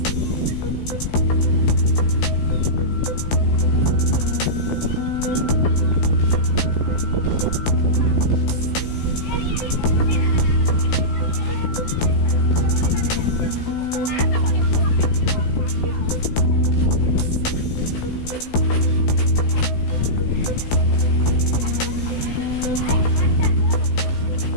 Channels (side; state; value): right; late; 16 ms